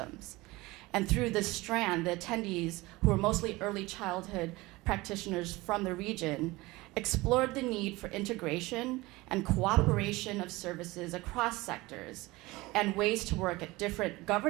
And through this strand, the attendees, who were mostly early childhood practitioners from the region, explored the need for integration and cooperation of services across sectors and ways to work at different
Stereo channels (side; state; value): left; quieter; 21.1 dB